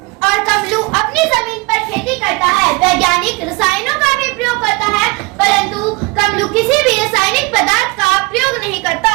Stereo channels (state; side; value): quieter; left; 25.4 dB